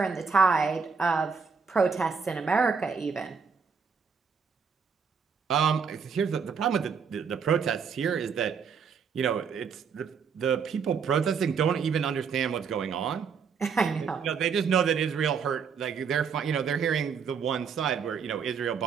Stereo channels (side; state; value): left; quieter; 6.0 dB